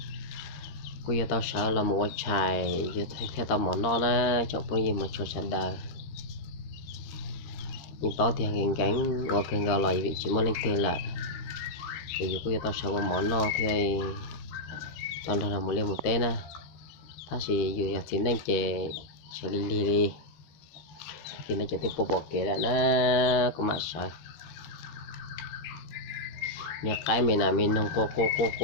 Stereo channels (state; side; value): late; right; 13 ms